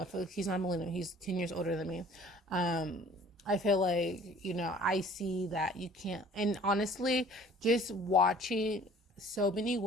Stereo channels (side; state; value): both; normal; correlation 0.52